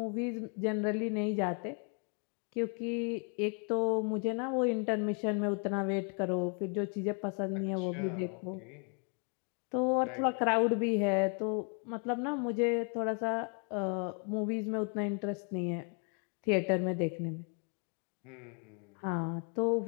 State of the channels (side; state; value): right; quieter; 39.9 dB